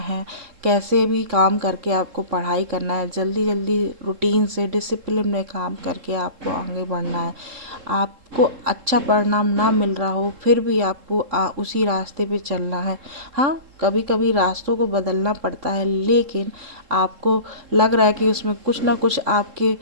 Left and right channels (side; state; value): left; late; 3.7 ms